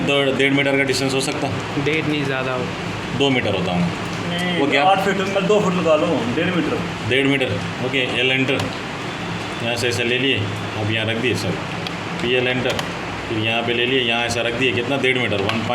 1.5 मीटर का डिस्टेंस हो सकता? 1.5 नहीं, ज़्यादा हो। 2 मीटर होता हूँ वो क्या? 8 फीट में 2 फुट लगा लो, 1.5 metre. 1.5 metre. Okay, L enter, यहाँ से ऐसे ले लिए, अब यहाँ रख दिए सर, पी एल एंटर, फिर यहाँ पे ले लिए, यहाँ ऐसा रख दिए, कितना? 1.5 मीटर,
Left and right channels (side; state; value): both; identical; correlation 1.00